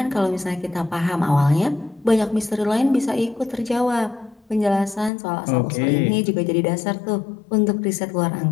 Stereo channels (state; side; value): drops out; right; at 5.1 s